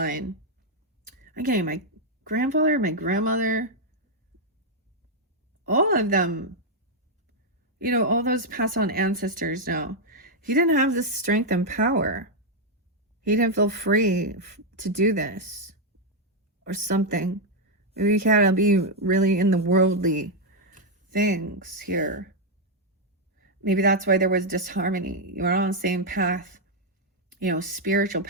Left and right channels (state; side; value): normal; both; correlation -0.01